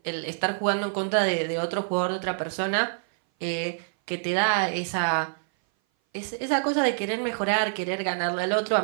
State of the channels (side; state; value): left; silent; 58 dB below the other